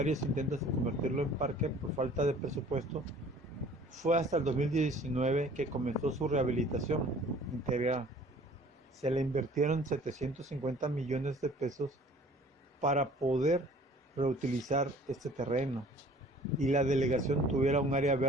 intentos de convertirlo en parque por falta de presupuesto, fue hasta el 2019 que comenzó su rehabilitación integral. Se le invirtieron 750 millones de pesos para poder reutilizar este terreno y la delegación tuviera un área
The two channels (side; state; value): both; normal; correlation 0.51